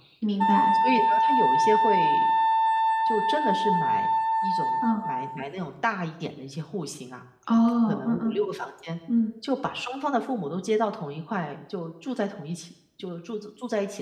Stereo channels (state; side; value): identical; both; correlation 1.00